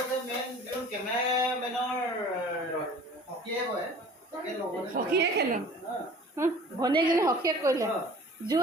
সখীয়ে খেলোঁ ভনীয়েকজনী সখীয়ে কৰিলে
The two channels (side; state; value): both; normal; correlation 0.46